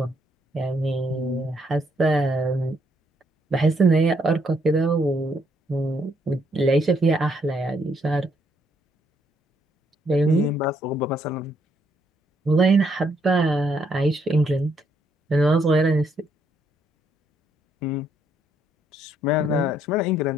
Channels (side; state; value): both; normal; correlation 0.72